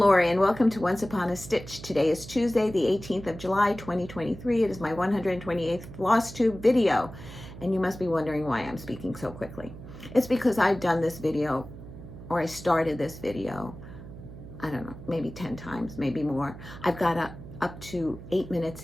and welcome to Once Upon a Stitch. Today is Tuesday, the 18th of July, 2023. It is my 128th Flosstube video. And you must be wondering why I'm speaking so quickly. It's because I've done this video, or I started this video, I don't know, maybe 10 times, maybe more. I've got up to 8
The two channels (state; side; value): noise; right; hum, 14 dB below the sound